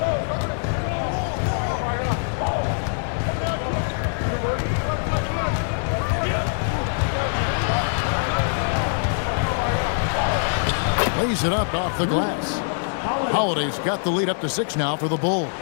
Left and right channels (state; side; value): silent; right; digital silence